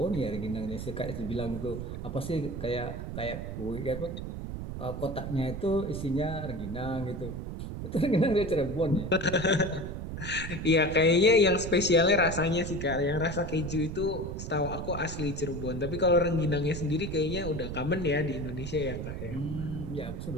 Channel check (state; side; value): noise; right; rumble, 6 dB below the sound